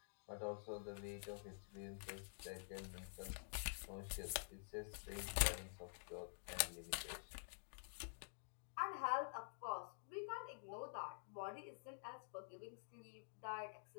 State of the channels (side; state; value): right; silent; digital silence